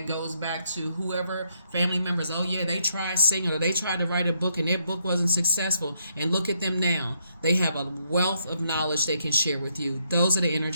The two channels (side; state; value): both; inverted; correlation -0.75